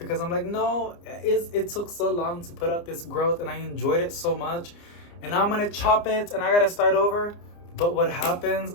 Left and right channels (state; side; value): late; right; 29 ms